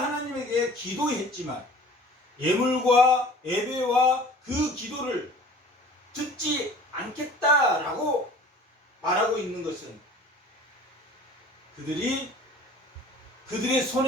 기도했지만 예물과 예배와 그 기도를 듣지 않겠다라고 말하고 있는 것은 그들이 그들의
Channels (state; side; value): normal; both; correlation 0.46